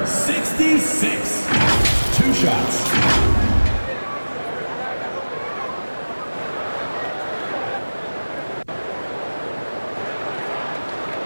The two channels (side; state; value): both; inverted; correlation -1.00